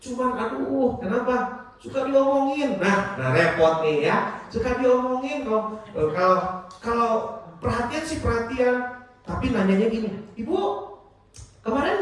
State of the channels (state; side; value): identical; both; correlation 1.00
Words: Cuman aduh, kenapa? suka diomongin. Nah repot nih ya. Suka diomongin kalau perhatian sih perhatian, tapi nanyanya gini, Ibu